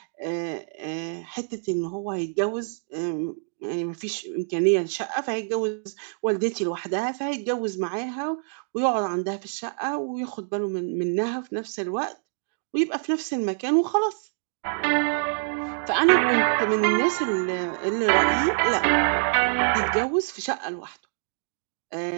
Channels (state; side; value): silent; left; digital silence